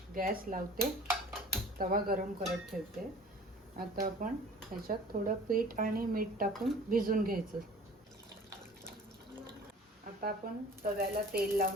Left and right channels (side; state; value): both; normal; correlation 0.45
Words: गॅस लावते, तवा गरम करत ठेवते. आता आपण ह्याच्यात थोडं पीठ आणि मीठ टाकून भिजून घ्यायचं. आता आपण तव्याला तेल